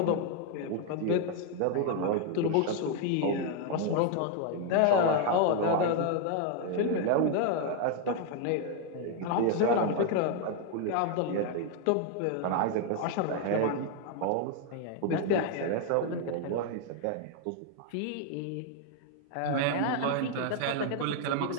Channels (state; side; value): different; both; correlation 0.00